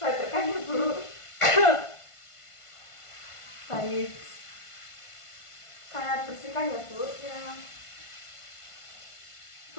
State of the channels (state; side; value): late; right; 1.5 ms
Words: ya Bu. Baik, saya bersihkan ya Bu. Ya.